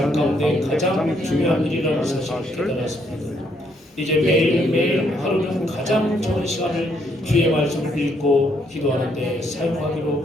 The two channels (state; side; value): normal; both; correlation 0.72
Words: 가운데 가장 중요한 일이라는 사실을 깨달았습니다. 이제 매일매일 하루는 가장 좋은 시간을 주의 말씀을 읽고 기도하는 데 사용하기로